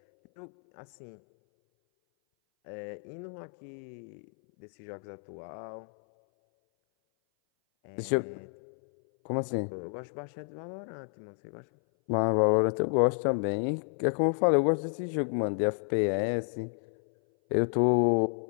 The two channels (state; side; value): silent; right; 58 dB below the other